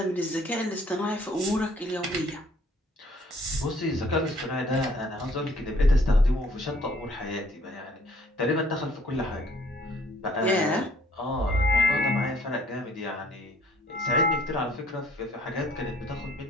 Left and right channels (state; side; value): normal; both; correlation 0.59